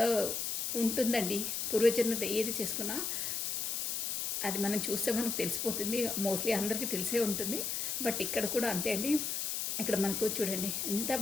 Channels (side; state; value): left; noise; hiss, 1 dB below the sound